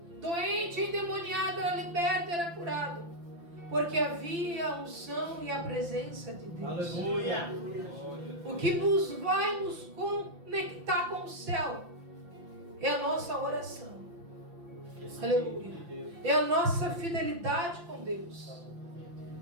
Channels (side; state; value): left; late; 5.8 ms